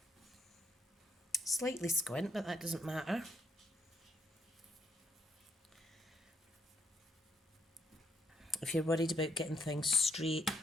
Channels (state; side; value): normal; both; correlation 0.73